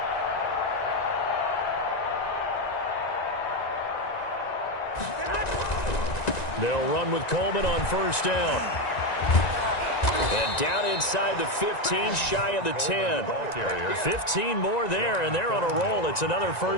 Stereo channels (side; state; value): right; late; 1.9 ms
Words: They'll run with Coleman on first down. And down inside the 15, shy of the 10. 15 more there, and they're on a roll. It's another